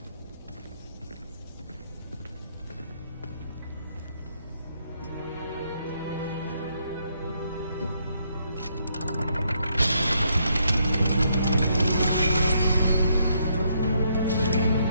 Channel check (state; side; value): inverted; both; correlation -0.74